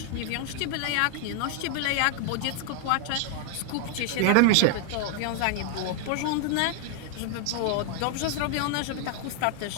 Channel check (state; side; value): different; both; correlation 0.00